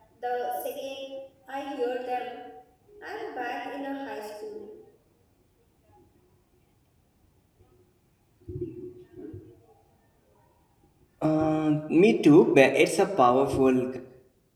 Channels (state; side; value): identical; both; correlation 1.00